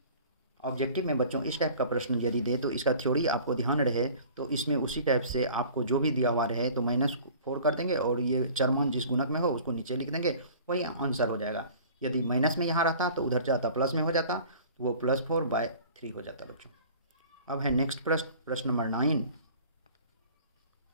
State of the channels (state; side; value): inverted; both; correlation -0.46